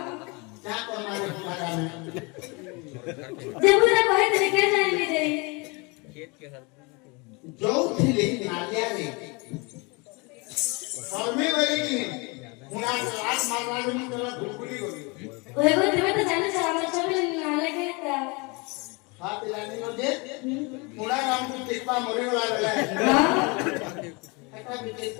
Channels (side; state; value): right; quieter; 28.7 dB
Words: क्या करना है तुम्हारा में जब बुढ़ा कोई दिने के जाने में दे जो थिले नालिया रे फर्मे वाली की मुड़ा लात मारना में तेरा गुलगुली होगी ओए वो तुम्हें तो जाने से हमारे चोबले नाले के ता हां पिलानी नो दे मुड़ा काम को टिकवा मरे वाला है हां একটা বিকে